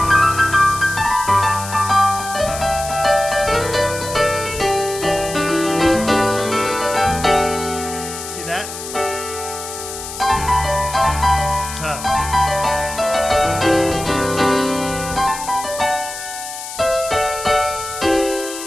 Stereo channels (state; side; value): noise; left; hiss, 10 dB below the sound